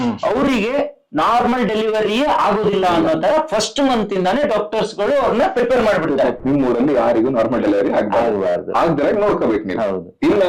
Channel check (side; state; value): both; identical; correlation 1.00